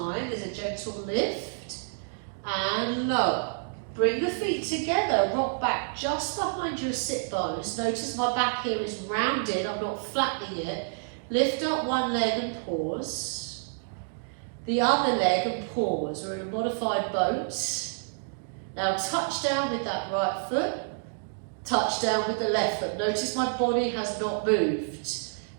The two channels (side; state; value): left; silent; digital silence